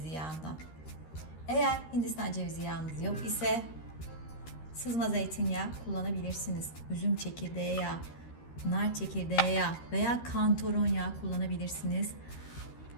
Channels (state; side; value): late; right; 13 ms